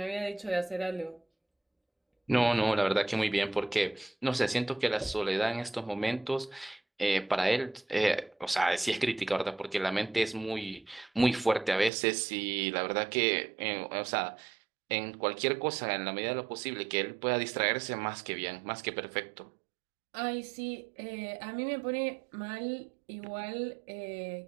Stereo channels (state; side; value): drops out; left; at 11.9 s